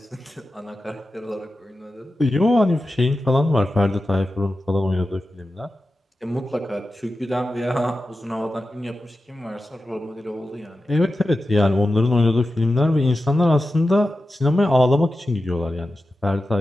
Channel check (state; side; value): normal; both; correlation 0.93